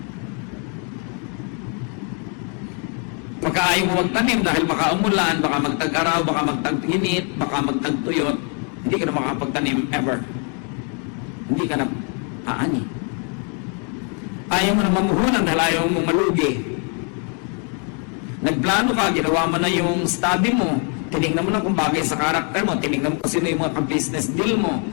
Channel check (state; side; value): quieter; right; 39.4 dB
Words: Pagka ayaw mo magtanim dahil baka umulan, baka magtag-araw, baka magtag-init, baka magtag-tuyot, hindi ka na makapagtanim ever. Hindi ka na aani. Ayaw mo na mamuhunan dahil ayaw mo malugi. Nagplano ka, ginawa mo na yung study mo, tinignan mo na kung bagay sa karakter mo, tinignan mo kung sino yung mga ka-business deal mo,